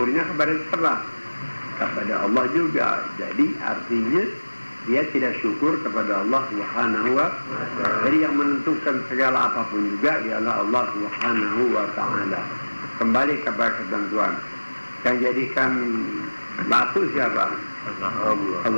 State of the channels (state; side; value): inverted; both; correlation -1.00